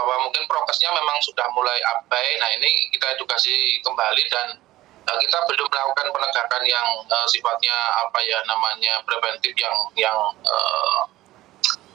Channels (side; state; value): left; quieter; 16.3 dB